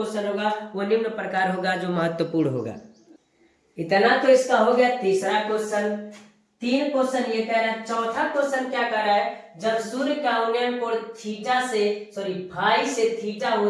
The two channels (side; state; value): both; identical; correlation 1.00